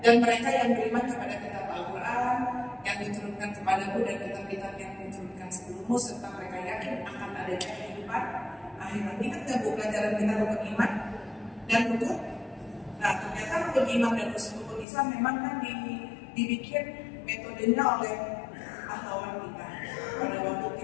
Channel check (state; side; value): drops out; right; at 14.9 s